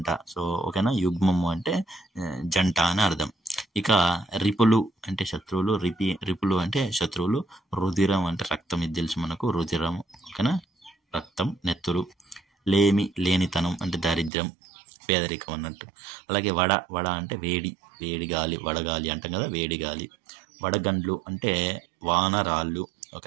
సో ఓకేనా? యుగ్మము అంటే జంట అని అర్థం. ఇక రిపులు అంటే శత్రువులు. రిపులు అంటే శత్రువులు. రుధిరం అంటే రక్తం, ఇది తెలుసు మనకు, రుధిరం. ఓకేనా? రక్తం, నెత్తురు. లేనితనం అంటే దారిద్ర్యం, పేదరికం అన్నట్టు. అలాగే వడ అంటే వేడి గాలి, వడగాలి అంటాం కదా, వేడి గాలి. వడగండ్లు అంటే వానరాళ్ళు.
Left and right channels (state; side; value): drops out; left; at 14.3 s